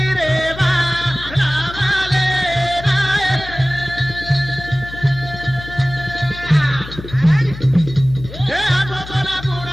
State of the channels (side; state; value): left; noise; hum, 13 dB below the sound